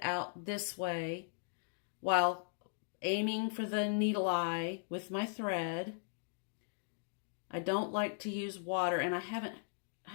out this way while aiming for the needle eye with my thread. I don't like to use water, and I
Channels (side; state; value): right; silent; digital silence